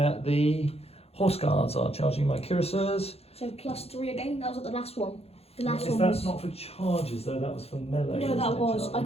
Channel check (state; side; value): late; right; 0.29 ms